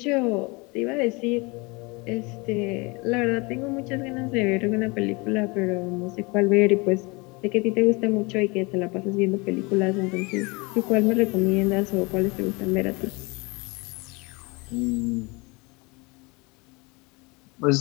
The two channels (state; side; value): quieter; right; 27.0 dB